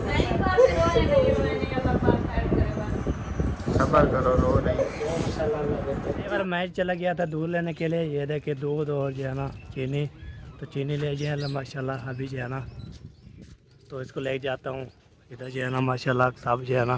सबर करो, रो नहीं। एक बार मैच चला गया था दूध लेने के लिए, ये देखे दूध और जो है ना चीनी, तो चीनी ले जो है माशाल्लाह अभी जो है ना, तो इसको ले जाता हूँ। इधर जो है ना माशाल्लाह सब जो है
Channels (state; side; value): identical; both; correlation 1.00